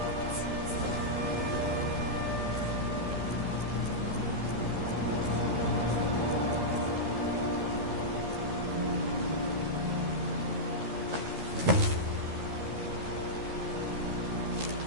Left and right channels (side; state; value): left; late; 13 ms